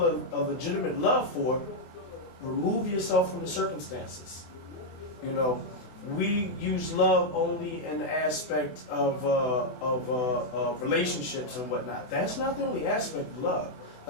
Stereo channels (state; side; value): late; right; 24 ms